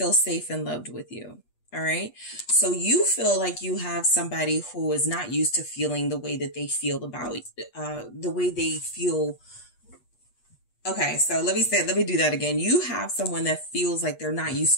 safe and loved with you. All right. So you feel like you have somebody who is not used to feeling the way that they feel about, the way they feel. Okay. So let me do that again. You have someone that feels like they're not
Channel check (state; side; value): late; right; 8.3 ms